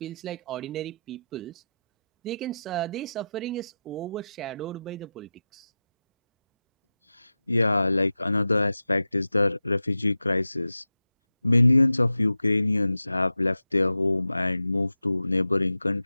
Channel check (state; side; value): inverted; both; correlation -0.92